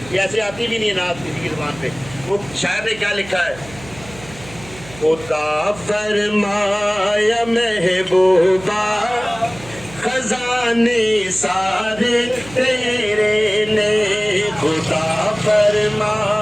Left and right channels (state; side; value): noise; right; hum, 18 dB below the sound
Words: یہ ایسے آتی بھی نہیں ہے نعت کسی کی زبان پہ. وہ شاعر نے کیا لکھا ہے؟ خدا فرمایا محبوبہ خزانے سارے تیرے نے، خدا